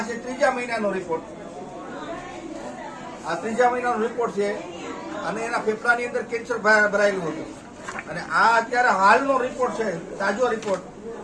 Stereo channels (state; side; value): identical; both; correlation 1.00